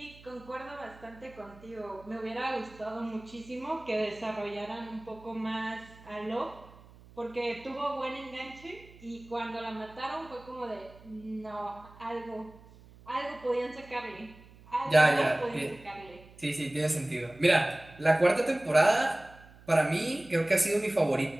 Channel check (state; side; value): noise; right; hum, 22 dB below the sound